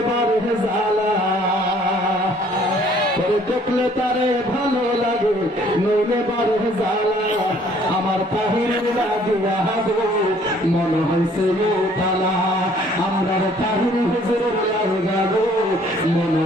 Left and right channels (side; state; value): both; normal; correlation 0.59